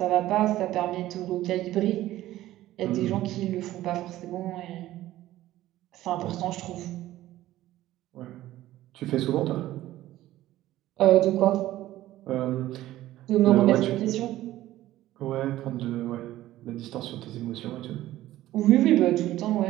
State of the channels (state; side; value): quieter; left; 14.9 dB